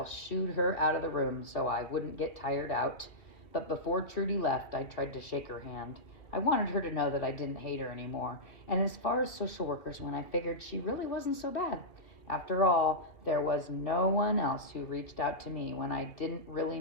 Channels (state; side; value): late; right; 2.6 ms